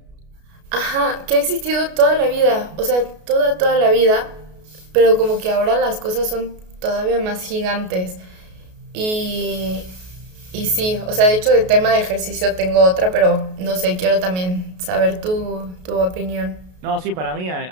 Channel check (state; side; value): late; left; 33 ms